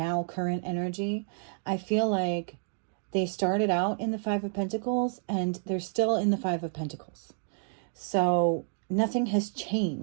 current energy, I feel like they started out in the Five of Pentacles and they're still in the Five of Pentacles. So nothing has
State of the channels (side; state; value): left; silent; 58 dB below the other